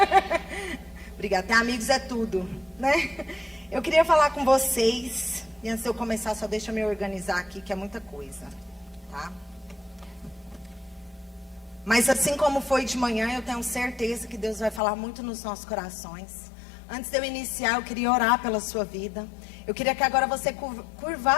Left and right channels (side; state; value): right; drops out; at 14.8 s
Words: Obrigada, ter amigos é tudo, né? Eu queria falar com vocês, e antes de eu começar, só deixa eu me organizar aqui, que é muita coisa, tá? Mas assim como foi de manhã, eu tenho certeza que Deus vai falar muito nos nossos corações. Antes de eu iniciar, eu queria orar pela sua vida. Eu queria que agora você